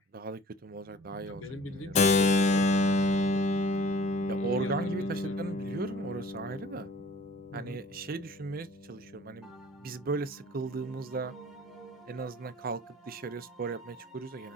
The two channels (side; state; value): both; normal; correlation 0.47